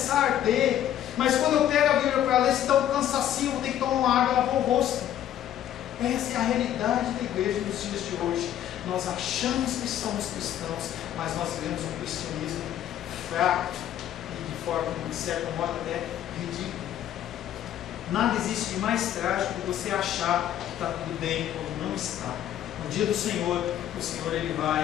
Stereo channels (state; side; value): quieter; right; 11.3 dB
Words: a arder. Mas quando eu pego a Bíblia para ler, se dá um cansacinho, vou ter que tomar uma água e lavar o rosto. Essa é a realidade da igreja nos dias de hoje. Nós achamos que somos cristãos, mas nós vivemos um cristianismo fraco e de forma, de certo modo, até ridículo. Nada existe de mais trágico que você achar que está tudo bem quando não está. No dia do Senhor, o Senhor ele